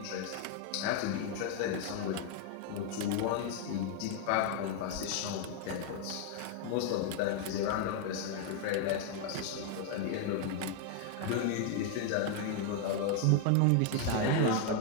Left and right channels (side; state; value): both; different; correlation 0.00